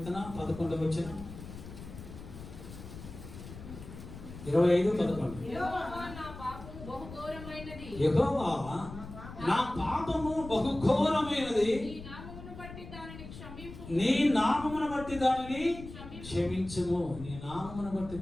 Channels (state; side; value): noise; left; rumble, 13 dB below the sound